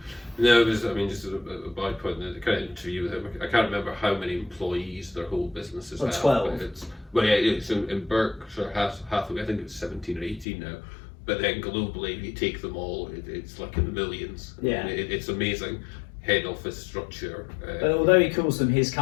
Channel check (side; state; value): right; drops out; at 10.5 s